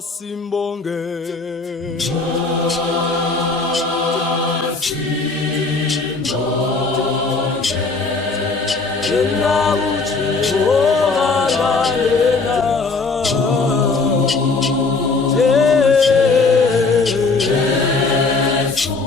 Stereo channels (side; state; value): right; quieter; 4.0 dB